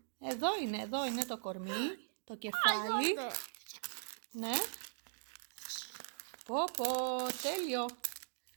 Εδώ είναι το κορμί, το κεφάλι. Ναι. Πω, τέλειο.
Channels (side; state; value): left; silent; digital silence